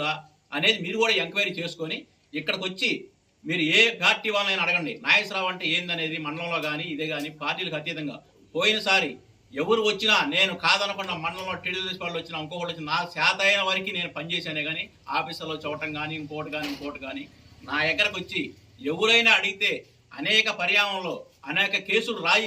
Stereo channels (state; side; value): identical; both; correlation 1.00